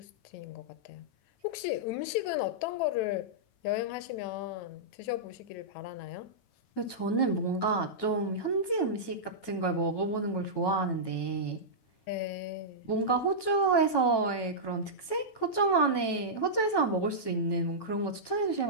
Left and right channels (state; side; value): late; right; 9.2 ms